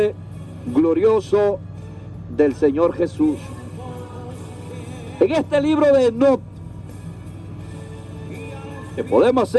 glorioso del Señor Jesús. En este libro de Enoc, que podemos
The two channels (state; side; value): identical; both; correlation 1.00